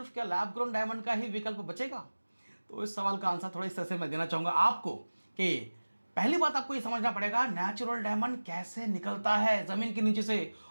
क्या लैब ग्रोन डायमंड का ही विकल्प बचेगा? तो इस सवाल का आंसर थोड़ा इस तरह से मैं देना चाहूंगा आपको कि पहली बात आपको ये समझना पड़ेगा नेचुरल डायमंड कैसे निकलता है जमीन के नीचे से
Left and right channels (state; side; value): inverted; both; correlation -1.00